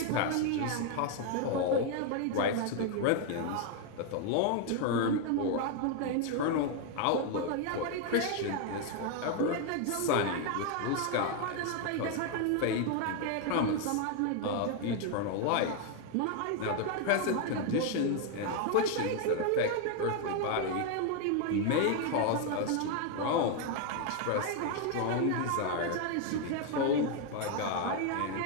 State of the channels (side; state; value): both; different; correlation 0.01